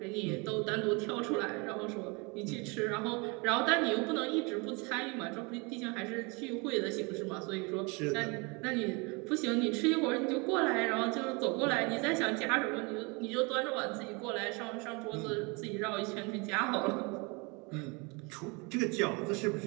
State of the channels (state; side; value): quieter; left; 29.4 dB